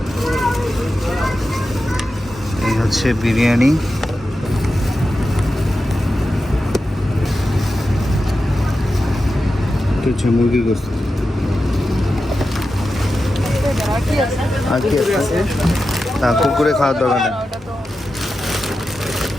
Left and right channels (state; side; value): normal; both; correlation 0.91